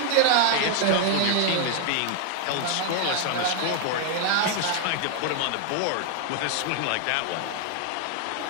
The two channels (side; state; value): both; different; correlation 0.00